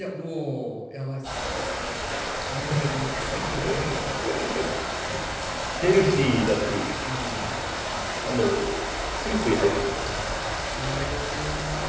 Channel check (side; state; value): both; identical; correlation 1.00